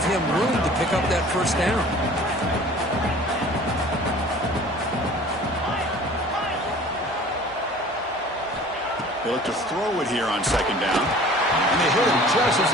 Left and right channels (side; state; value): both; normal; correlation 0.47